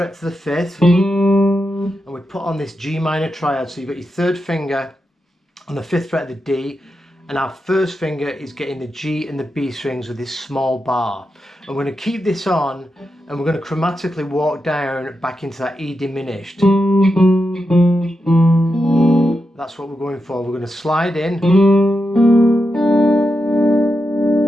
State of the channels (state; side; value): normal; both; correlation 0.87